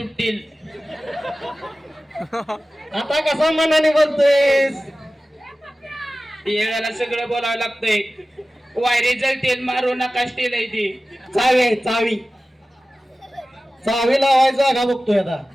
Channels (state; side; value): normal; both; correlation 0.96